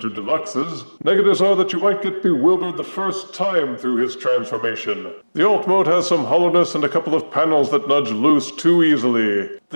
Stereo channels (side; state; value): both; inverted; correlation -1.00